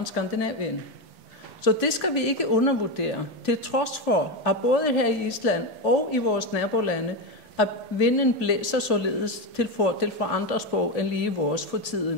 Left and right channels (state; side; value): late; right; 1.8 ms